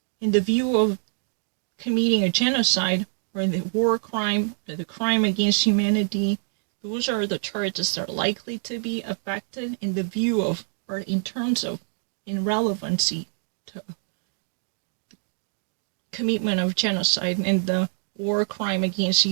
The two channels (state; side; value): silent; left; 61 dB below the other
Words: in the view of committing a genocide or the war crime or the crime against humanity. Those are the charges that are likely to be affected in the view of, or in terms of, in relevancy to the commitment of genocide and the war crime against